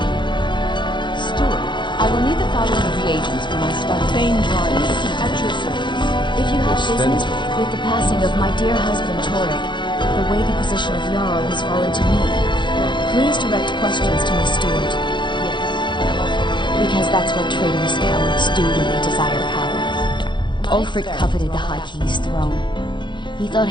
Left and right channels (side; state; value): right; late; 0.23 ms